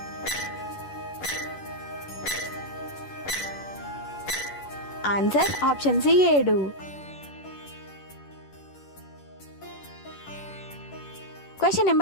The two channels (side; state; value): right; late; 10 ms